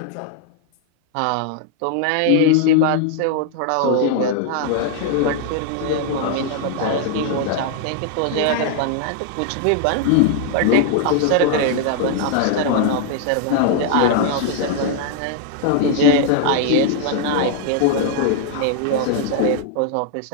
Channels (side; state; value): both; different; correlation 0.00